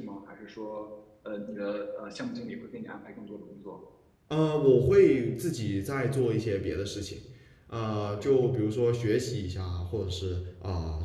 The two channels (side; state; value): both; identical; correlation 1.00